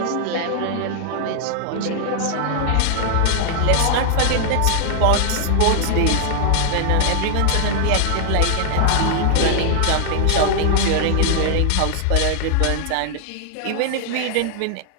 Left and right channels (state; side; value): different; both; correlation 0.00